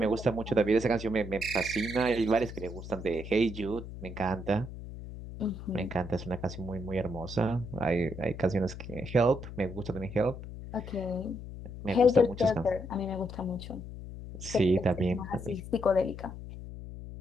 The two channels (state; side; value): noise; left; hum, 11 dB below the sound